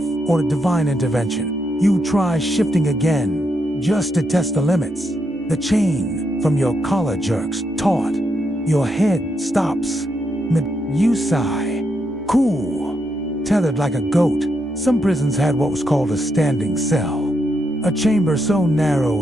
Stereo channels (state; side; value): normal; both; correlation 0.81